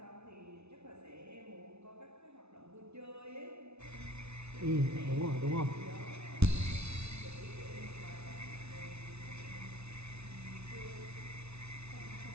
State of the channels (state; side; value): late; left; 0.81 ms